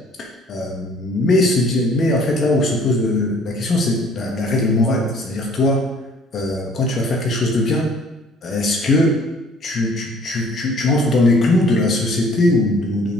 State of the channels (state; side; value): normal; both; correlation 0.56